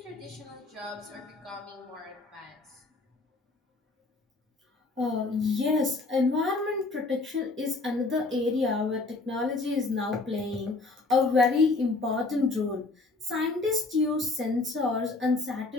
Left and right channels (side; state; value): right; quieter; 3.5 dB